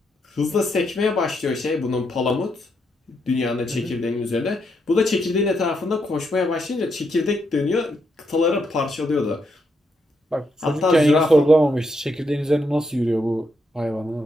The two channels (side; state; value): both; normal; correlation 0.79